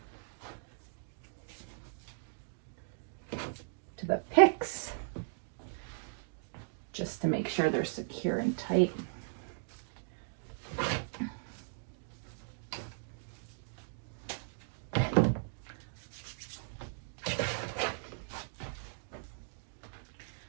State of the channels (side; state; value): left; silent; digital silence